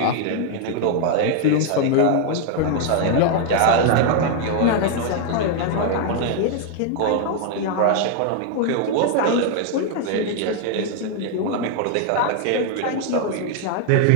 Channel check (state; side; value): different; both; correlation 0.00